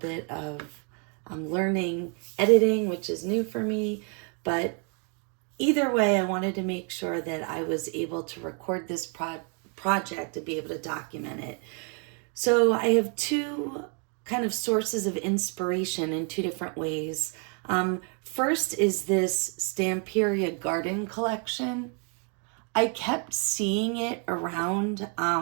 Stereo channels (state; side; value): quieter; left; 38.9 dB